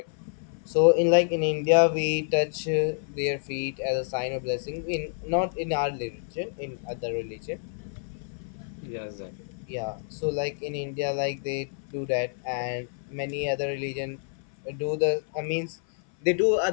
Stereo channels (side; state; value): right; silent; 57 dB below the other